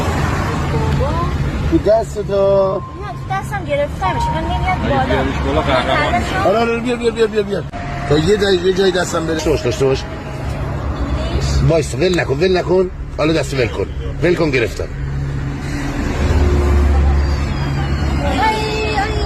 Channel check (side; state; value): both; identical; correlation 1.00